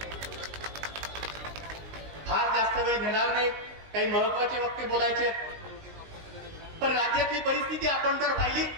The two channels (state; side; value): late; left; 19 ms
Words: फार जास्त वेळ घेणार नाही, काही महत्वाचे वक्ते बोलायचे, पण राज्यातली परिस्थिती आपण जर पाहिली